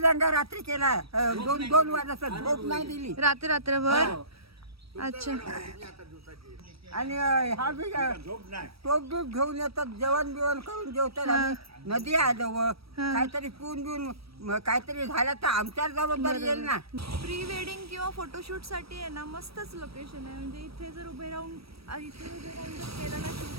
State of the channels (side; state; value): left; late; 0.76 ms